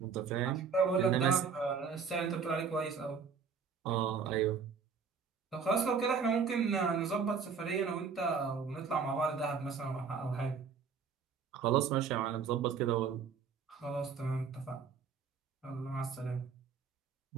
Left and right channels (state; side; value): quieter; left; 5.9 dB